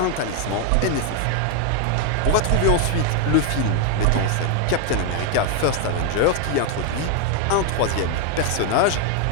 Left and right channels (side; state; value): both; different; correlation 0.01